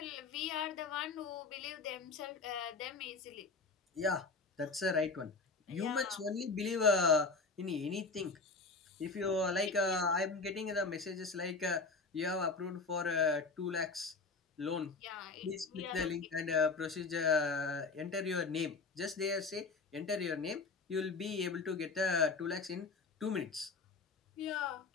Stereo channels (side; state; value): right; quieter; 4.1 dB